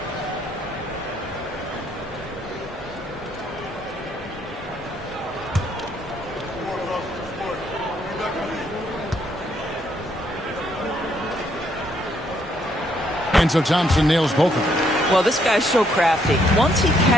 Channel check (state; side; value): normal; both; correlation 0.71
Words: And so Thompson nails both of them. Well, this guy's so crafty. Once he